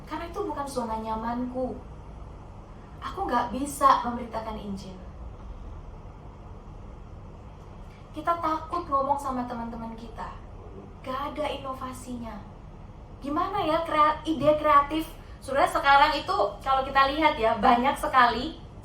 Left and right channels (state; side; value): identical; both; correlation 1.00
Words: karena itu bukan zona nyamanku. Aku gak bisa memberitakan Injil. Kita takut ngomong sama teman-teman kita, gak ada inovasinya. Gimana ya ide kreatif? Saudara, sekarang itu kalau kita lihat ya, banyak sekali.